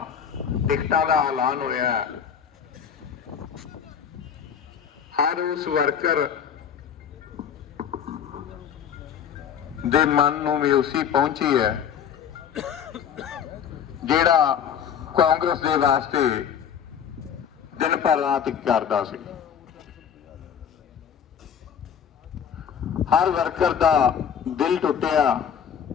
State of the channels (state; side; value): quieter; right; 8.1 dB